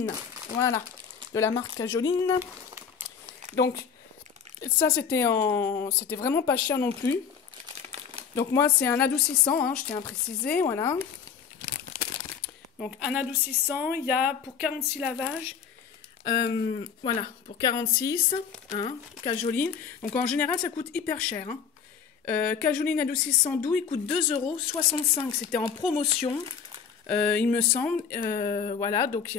Voilà, de la marque Cajoline. Donc, ça c'était vraiment pas cher non plus. Donc moi c'est un adoucissant, hein, je tiens à préciser, voilà. Donc un adoucissant, il y a pour 46 lavages, voilà, pour 46, hein, Cajoline. Donc en général ça coûte hyper cher. Hein. Cajoline adoucissant doux, il coûte 2,65 €, c'était en promotion, il me semble. Voilà, donc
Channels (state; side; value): quieter; right; 7.0 dB